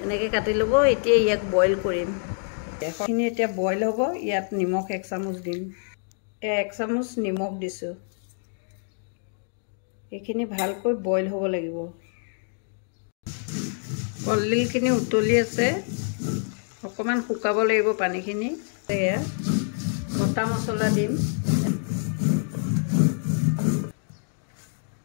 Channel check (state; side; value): silent; right; digital silence